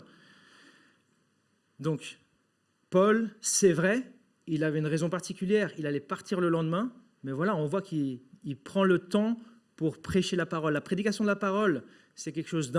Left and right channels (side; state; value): both; identical; correlation 1.00